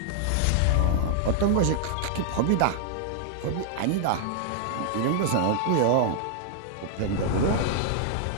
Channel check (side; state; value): both; different; correlation 0.00